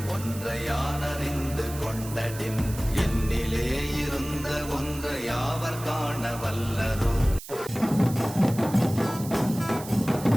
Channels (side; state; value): right; noise; hiss, 13 dB below the sound